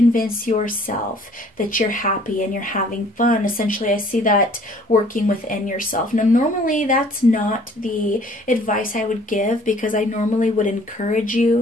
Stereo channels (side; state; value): both; normal; correlation 0.56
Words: yourself that you're happy and you're having fun, essentially, I see that working within yourself. Now, normally that's not the advice I would give, because I normally would encourage